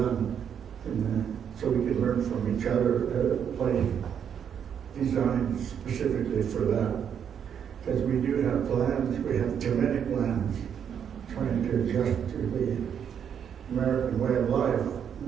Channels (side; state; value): left; quieter; 8.2 dB